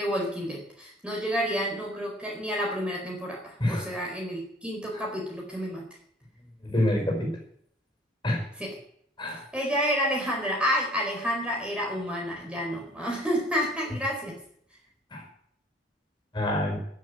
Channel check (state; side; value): normal; both; correlation 0.54